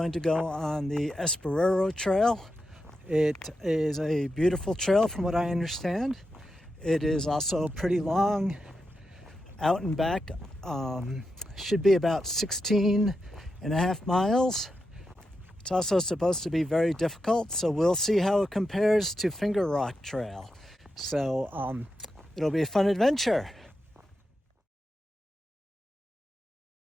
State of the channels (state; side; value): normal; both; correlation 0.87